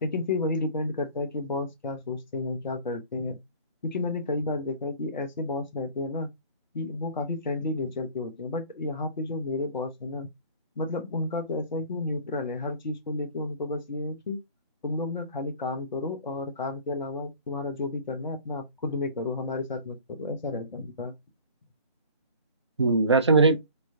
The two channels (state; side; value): inverted; both; correlation -0.45